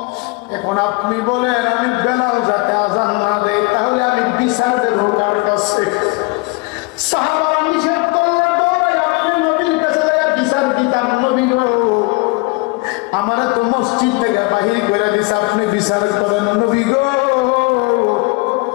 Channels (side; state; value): right; quieter; 26.1 dB